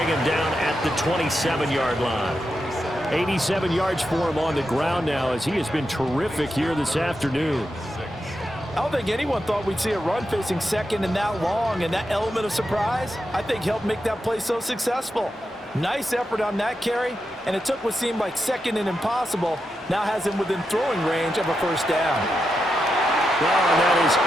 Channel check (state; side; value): normal; both; correlation 0.87